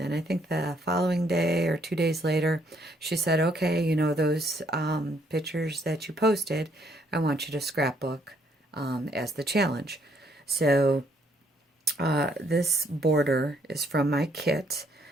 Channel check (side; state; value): both; normal; correlation 0.69